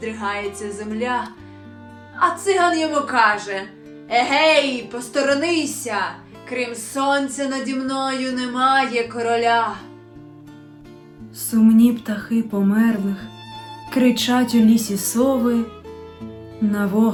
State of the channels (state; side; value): identical; both; correlation 1.00